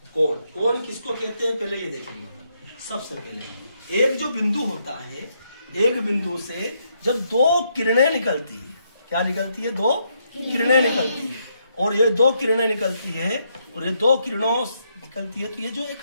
कोण किसको कहते हैं पहले ये देखेंगे। सबसे पहले एक जो बिंदु होता है, एक बिंदु से जब दो किरणें निकलती है, क्या निकलती है? दो किरणें निकलती है, और ये दो किरणें निकलती है और ये दो किरणों निकलती है, तो ये जो एक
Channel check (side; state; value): both; inverted; correlation -0.76